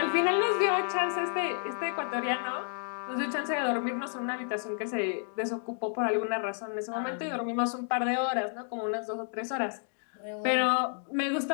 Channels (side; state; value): right; silent; 57 dB below the other